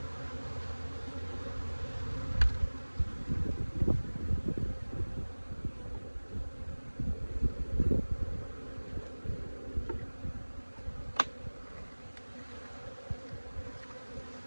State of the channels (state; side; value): inverted; both; correlation -1.00